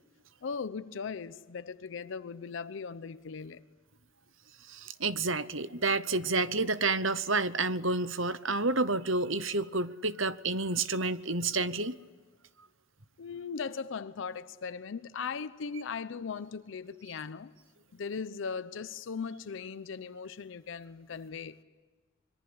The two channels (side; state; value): both; normal; correlation -0.07